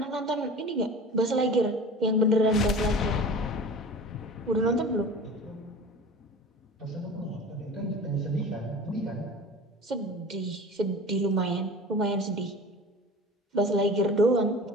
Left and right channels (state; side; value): normal; both; correlation 0.38